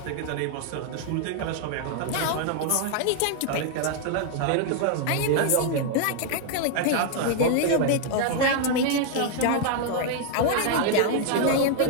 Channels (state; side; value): different; both; correlation 0.00